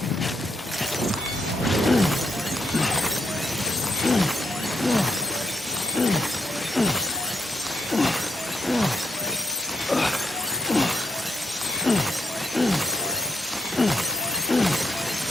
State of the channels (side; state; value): both; normal; correlation 0.80